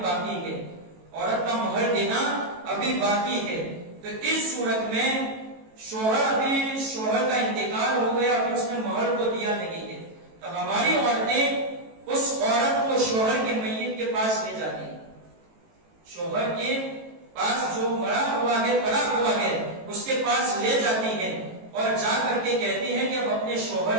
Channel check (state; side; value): late; left; 18 ms